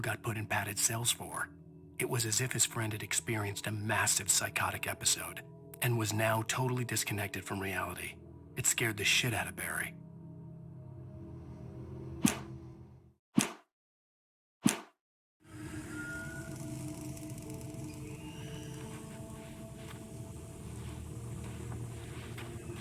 got put in padded cells for. It was as if his friend had experienced a massive psychotic episode and was now totally disconnected from reality. It scared the shit out of Barry.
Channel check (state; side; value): identical; both; correlation 1.00